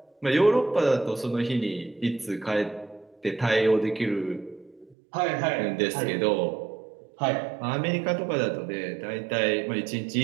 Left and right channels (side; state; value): left; drops out; at 5.0 s